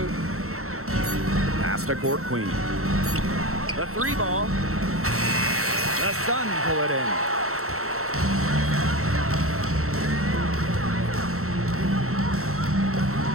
Pass to Court Queen. The 3 ball. The Sun pull it in.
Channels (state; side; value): late; left; 0.63 ms